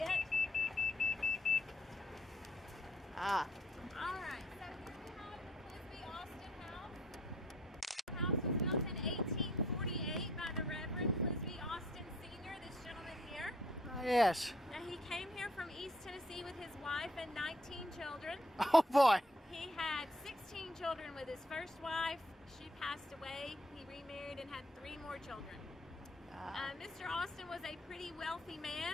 it. All right. So here we have the Clisby Austin house. The house was built in 1848 by the Reverend Clisby Austin Sr., this gentleman here. Oh, yes. Now, he came here from East Tennessee with his wife and 19 children. Oh, boy. He had 16 children with his first wife. She passed away. He remarried and had 3 more children. Mr. Austin was a pretty wealthy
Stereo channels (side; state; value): both; normal; correlation 0.63